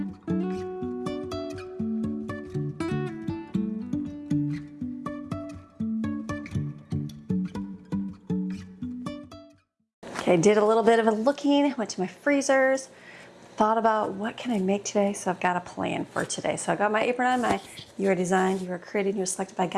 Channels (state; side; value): identical; both; correlation 1.00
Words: Okay, did a little bit of a looking, went to my freezers, thought about what can I make today, so I've got a plan for today. So I got my apron on, you are designed, you are created, you are selected by